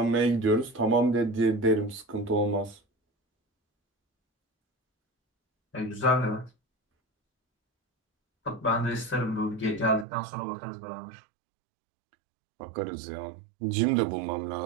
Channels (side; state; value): left; drops out; at 10.1 s